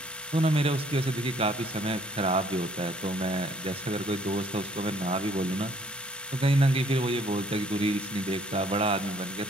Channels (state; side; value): normal; both; correlation 0.61